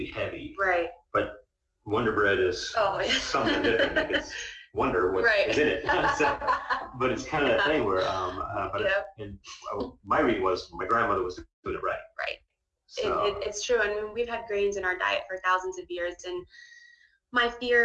heavy. Right. But Wonder Bread is something different. Like it's wonder what is in it. So, but it's kind of that thing where, my reading was my grandmother was doing it right. Right. So. It's true. I mean, we've had grains in our diet for thousands of years, and my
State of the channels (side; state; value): both; identical; correlation 1.00